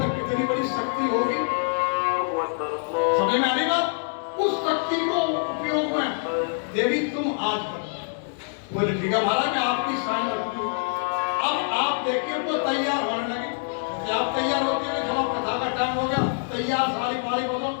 कितनी बड़ी शक्ति होगी, समझ में आ रही बात? उस शक्ति को उपयोग में देवी तुम आज कर। बोले ठीक है महाराज, मैं आपकी शान रखूंगी। अब आप देखिए वो तैयार होने लगी। जैसे आप तैयार होते हैं, चलो कथा का टाइम हो गया, तैयार साड़ी फाड़ी बोलो,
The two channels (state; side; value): silent; right; digital silence